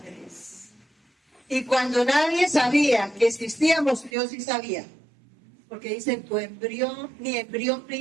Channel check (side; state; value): left; drops out; at 4.1 s